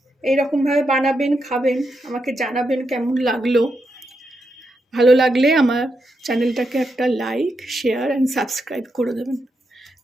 এইরকমভাবে বানাবেন, খাবেন, আমাকে জানাবেন কেমন লাগলো। ভালো লাগলে আমার চ্যানেলটাকে একটা লাইক, শেয়ার অ্যান্ড সাবস্ক্রাইব করে দেবেন।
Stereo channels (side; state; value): both; normal; correlation 0.84